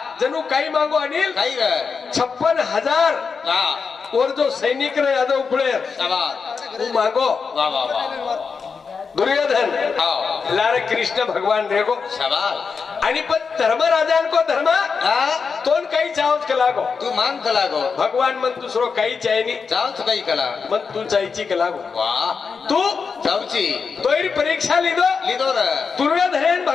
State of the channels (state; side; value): quieter; right; 5.4 dB